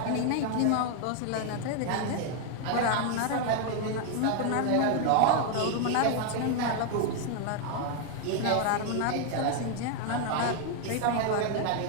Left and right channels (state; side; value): different; both; correlation 0.00